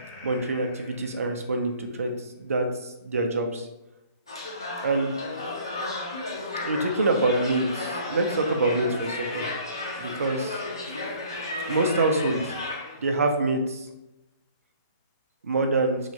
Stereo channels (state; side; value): inverted; both; correlation -0.55